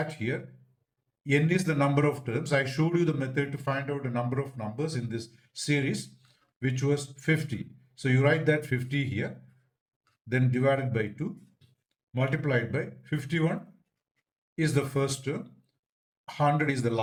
here, n is the number of terms. I showed you the method to find out the number of numbers in this series, which was 50. So you write that 50 here, then divided by 2, multiplied by 51 is the first term, 100 is the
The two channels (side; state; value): both; identical; correlation 1.00